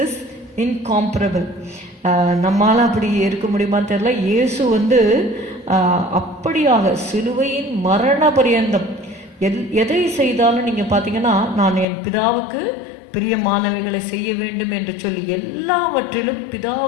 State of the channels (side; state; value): right; drops out; at 11.9 s